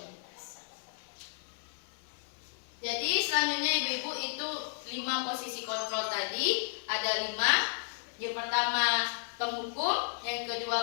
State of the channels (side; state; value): right; silent; 56 dB below the other